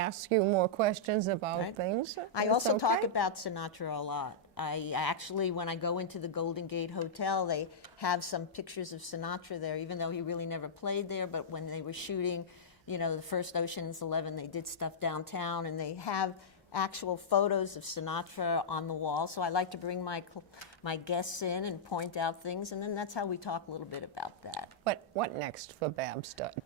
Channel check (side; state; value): both; normal; correlation -0.11